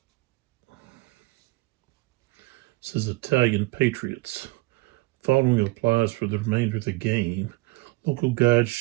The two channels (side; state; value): left; quieter; 21.7 dB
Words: This is Italian Patriots. Following applies for the remainder of the game. Local guides